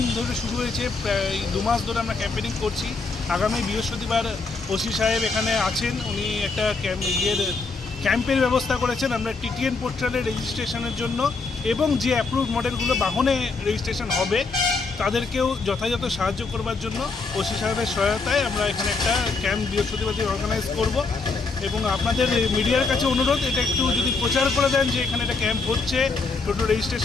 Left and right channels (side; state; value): right; quieter; 4.2 dB